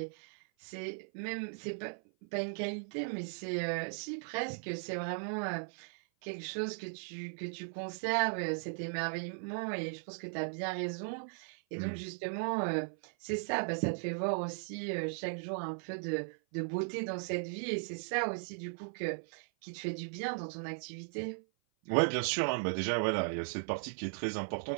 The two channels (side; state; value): left; silent; 53 dB below the other